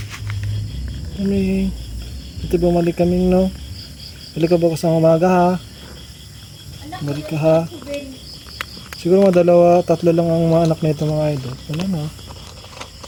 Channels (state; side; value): identical; both; correlation 1.00